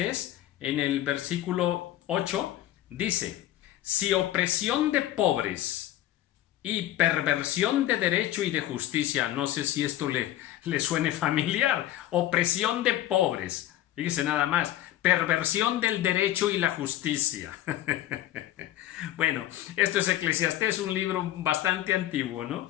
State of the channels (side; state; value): right; quieter; 13.6 dB